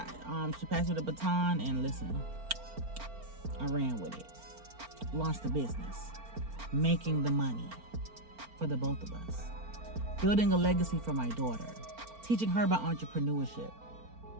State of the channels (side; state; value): left; late; 4.4 ms